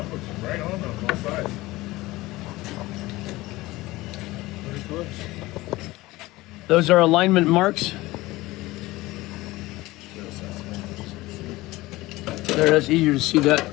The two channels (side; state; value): right; quieter; 19.3 dB